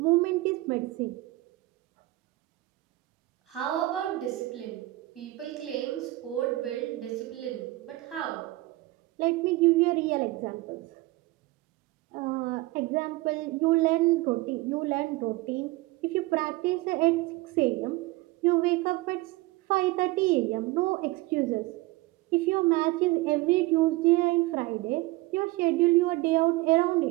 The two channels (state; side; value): quieter; left; 19.9 dB